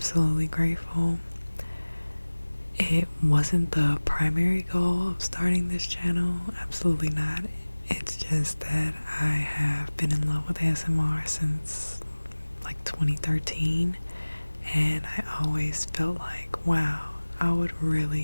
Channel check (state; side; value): inverted; both; correlation -1.00